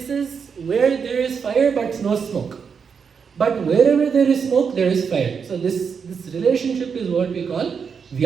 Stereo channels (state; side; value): quieter; left; 6.3 dB